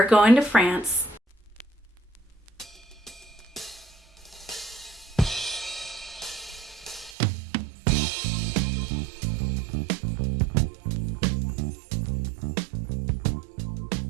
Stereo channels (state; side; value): drops out; left; at 7.2 s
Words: going to France.